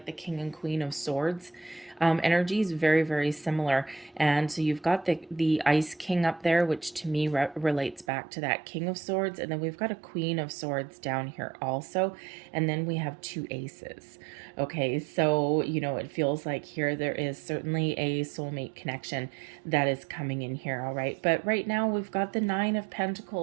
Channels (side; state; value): left; drops out; at 8.1 s